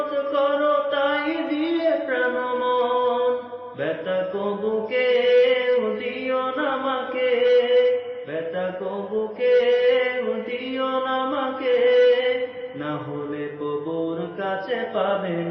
করো তাই দিয়ে প্রাণ মন। ব্যথা কবুকে দিও না আমাকে, ব্যথা কবুকে দিও না আমাকে, না হলে কবুর কাছে পাবে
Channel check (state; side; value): identical; both; correlation 1.00